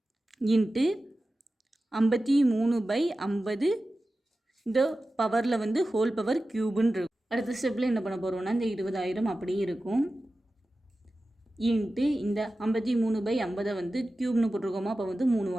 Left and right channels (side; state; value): both; normal; correlation 0.94